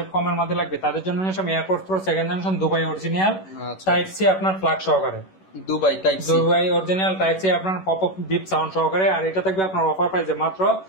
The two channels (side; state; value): right; late; 11 ms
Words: কমের মধ্যে লাগবে তাদের জন্য AirPods pro second generation Dubai original type C আপনার প্লাগ সহকারে, দুবাই অরিজিনাল টাইপ সি আপনার পপ আপ বিপ সাউন্ড সহকারে। আর এটা থাকবে আপনার অফার প্রাইসে মাত্র